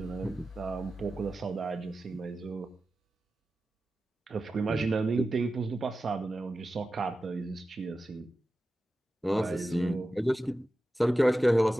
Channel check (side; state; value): both; normal; correlation 0.93